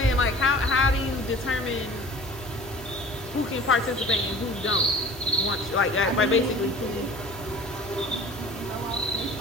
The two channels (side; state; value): both; normal; correlation 0.43